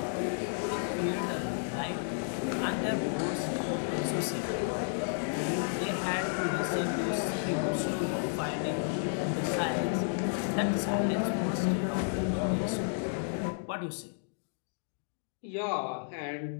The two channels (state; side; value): silent; right; digital silence